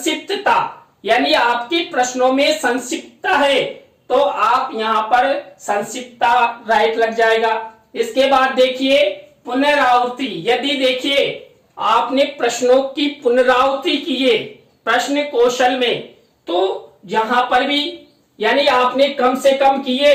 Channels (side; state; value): both; identical; correlation 1.00